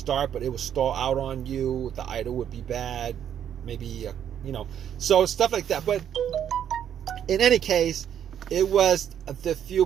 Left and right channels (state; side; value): quieter; left; 9.4 dB